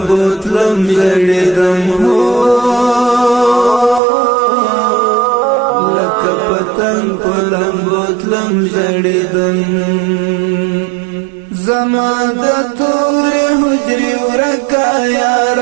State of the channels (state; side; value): drops out; left; at 4.0 s